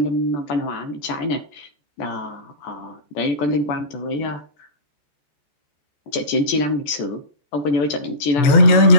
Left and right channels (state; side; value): late; right; 14 ms